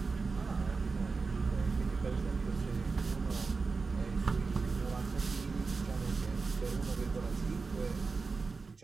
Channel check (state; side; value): quieter; left; 4.4 dB